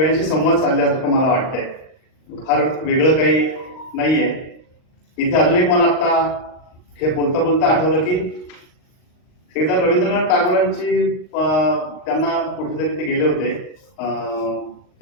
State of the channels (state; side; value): late; right; 38 ms